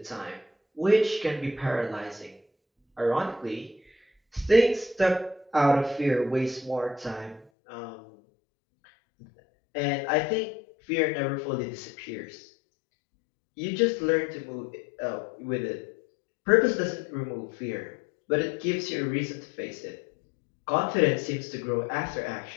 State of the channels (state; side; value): drops out; right; at 7.5 s